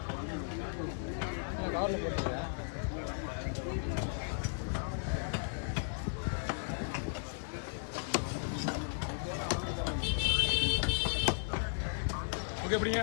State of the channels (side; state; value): right; silent; digital silence